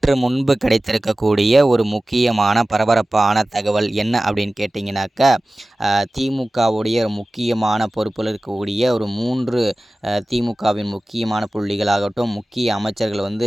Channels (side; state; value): both; normal; correlation 0.97